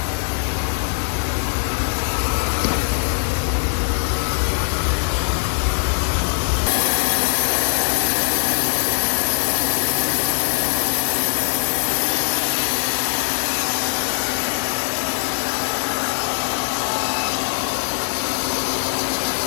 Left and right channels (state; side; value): silent; right; digital silence